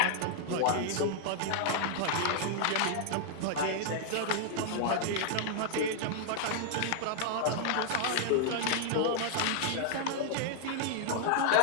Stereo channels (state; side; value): different; both; correlation 0.00